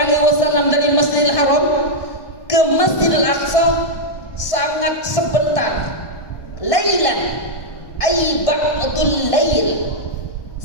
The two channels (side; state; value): right; late; 1.5 ms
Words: dari Masjidil Haram ke Masjidil Aqsa sangat sebentar. Lailan ay ba'dul lail,